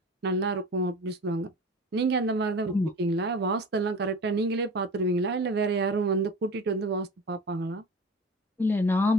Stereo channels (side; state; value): both; normal; correlation 0.35